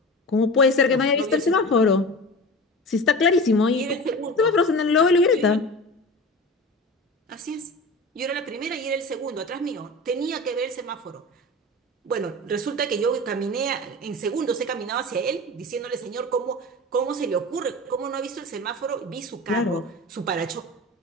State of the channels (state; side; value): normal; both; correlation 0.32